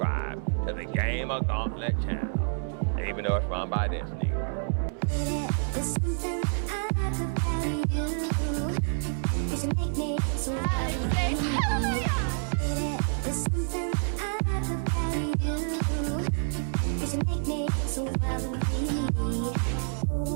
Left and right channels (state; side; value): silent; left; 59 dB below the other